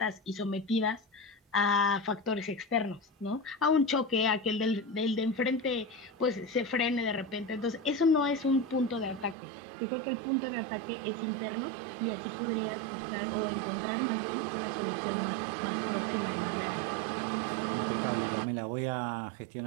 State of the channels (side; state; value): left; drops out; at 9.3 s